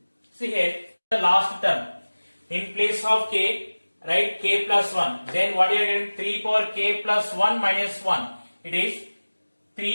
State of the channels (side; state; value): both; inverted; correlation -1.00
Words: see here the last term, in place of k write k plus 1, then what you are getting, 3 power k plus 1 minus 1, it is